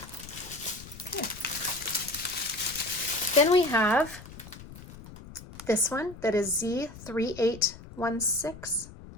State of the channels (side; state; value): left; noise; rumble, 16 dB below the sound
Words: Okay. Then we have this one that is Z3816.